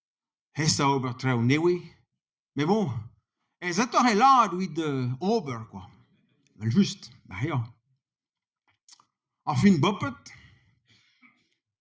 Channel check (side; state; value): both; identical; correlation 1.00